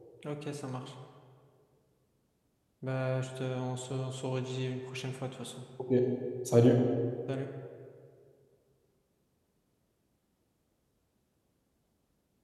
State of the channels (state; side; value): identical; both; correlation 1.00